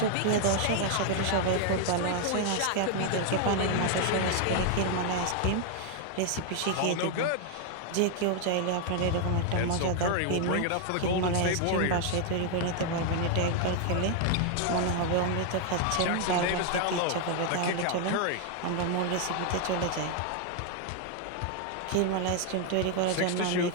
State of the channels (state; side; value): different; both; correlation 0.00